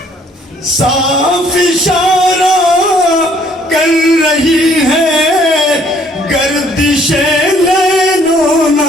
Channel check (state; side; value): normal; both; correlation 0.62